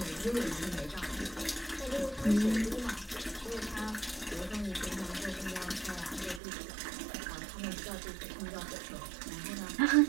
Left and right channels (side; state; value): left; drops out; at 6.4 s